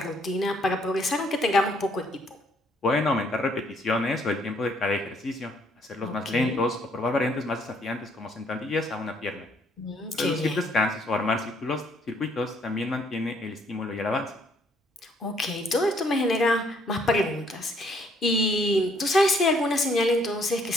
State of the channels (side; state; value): both; normal; correlation 0.67